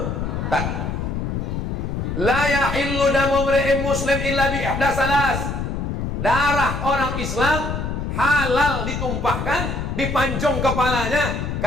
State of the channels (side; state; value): left; noise; rumble, 3 dB below the sound